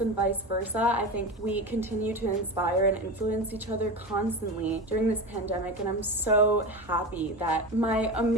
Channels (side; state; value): both; normal; correlation 0.24